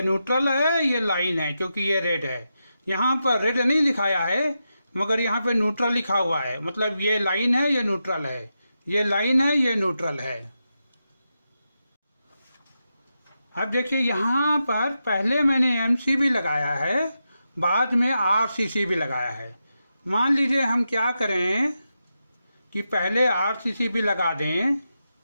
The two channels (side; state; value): both; inverted; correlation -0.88